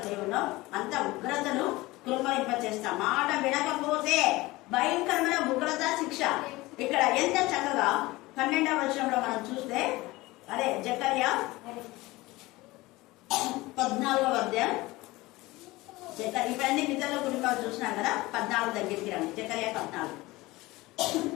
దేవునో అంత ఉగ్రతను కుమ్మరింపచేస్తా. మాట వినకపోతే భయంకరమైన ఉగ్రత శిక్ష. ఇక్కడ ఎంత చక్కగా 12వ వచనంలో మనం చూస్తే, అదే జకర్యా 14వ అధ్యాయం. ఇవన్నీ పితరుల కుటుంబాలు చూసినాం కదా. 14 దగ్గరికి రండి. జకర్యా 14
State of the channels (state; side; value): quieter; right; 20.2 dB